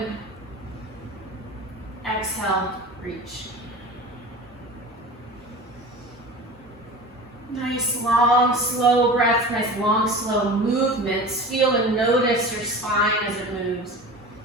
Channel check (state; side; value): normal; both; correlation 0.34